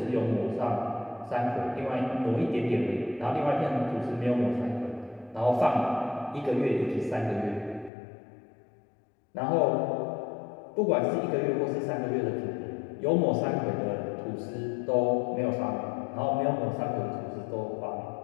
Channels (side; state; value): right; drops out; at 7.9 s